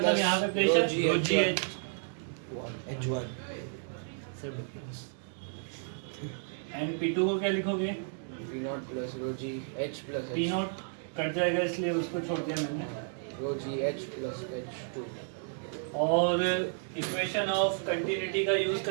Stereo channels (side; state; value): left; silent; digital silence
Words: यहाँ पे प्रेशर एंड P2 को क्या लिखोगे? P0 कट जाएगा इसलिए उसको छोड़ दिया मैंने। और इक्वेशन ऑफ कंटिन्यूटी का यूज